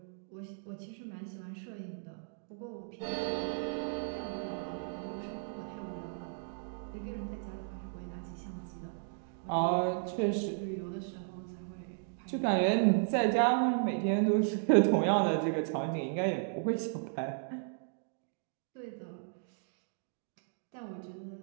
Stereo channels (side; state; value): left; silent; digital silence